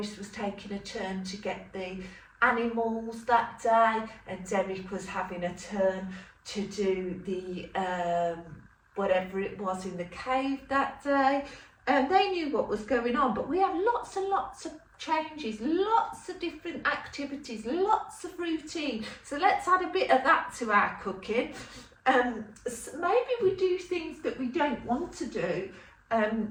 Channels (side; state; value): both; identical; correlation 1.00